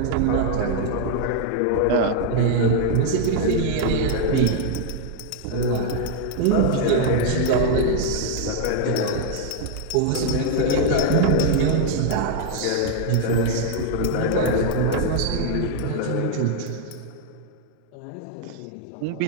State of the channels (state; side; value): different; both; correlation 0.00